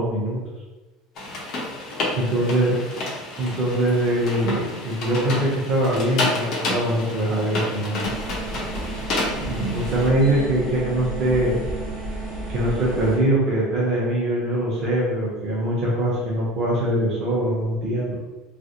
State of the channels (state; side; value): normal; both; correlation 0.37